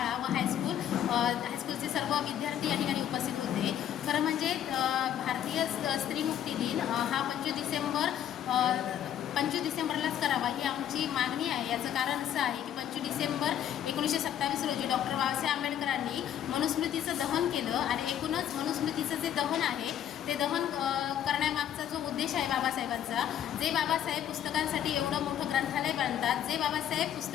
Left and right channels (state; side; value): quieter; right; 10.3 dB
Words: व हायस्कूलचे सर्व विद्यार्थी या ठिकाणी उपस्थित होते. खरं म्हणजे भारतीय स्त्री मुक्ती दिन हा 25 डिसेंबरलाच करावा ही आमची मागणी आहे. याचं कारण असं आहे की 25 डिसेंबर 1927 रोजी डॉक्टर बाबासाहेब आंबेडकरांनी मनुस्मृतीचं दहन केलं आणि एकूणच मनुस्मृतीचं जे दहन आहे ते दहन करण्यामागचा जो उद्देश आहे बाबासाहेबांचा, जे बाबासाहेब पुस्तकांसाठी एवढं मोठं ग्रंथालय बांधतात, जे बाबासाहेब